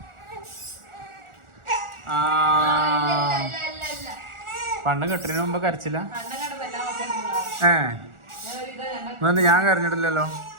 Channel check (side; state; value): left; late; 1.4 ms